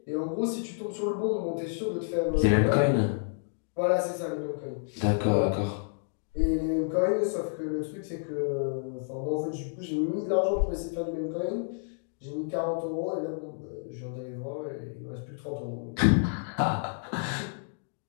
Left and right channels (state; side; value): silent; right; digital silence